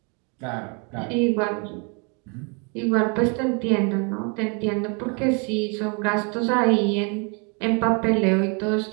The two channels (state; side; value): quieter; left; 34.6 dB